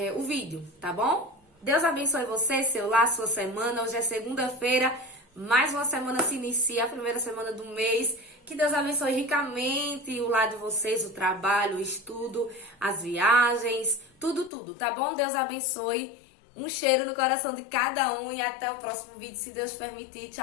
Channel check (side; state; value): right; drops out; at 14.5 s